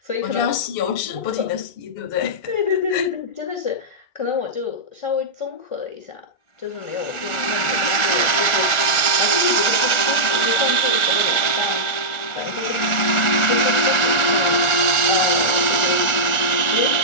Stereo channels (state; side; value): late; right; 1.4 ms